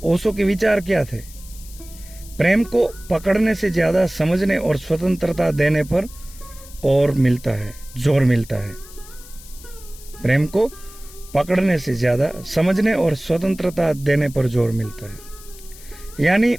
ओशो के विचार क्या थे? प्रेम को पकड़ने से ज्यादा समझने और स्वतंत्रता देने पर जोर मिलता है। प्रेम को पकड़ने से ज्यादा समझने और स्वतंत्रता देने पर जोर मिलता है। यानी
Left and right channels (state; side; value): noise; left; hiss, 19 dB below the sound